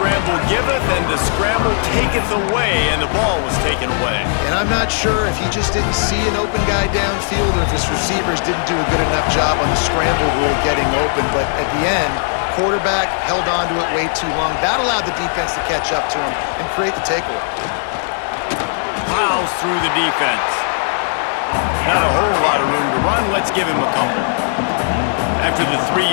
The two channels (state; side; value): silent; right; digital silence